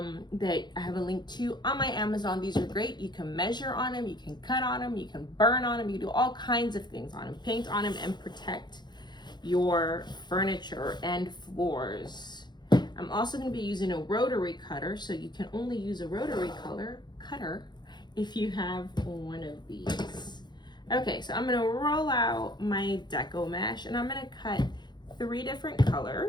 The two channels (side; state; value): right; late; 0.21 ms